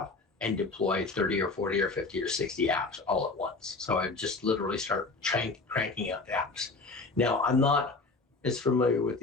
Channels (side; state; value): right; quieter; 3.8 dB